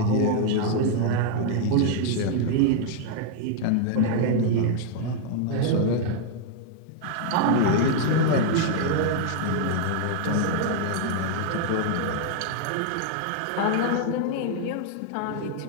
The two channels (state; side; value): different; both; correlation 0.00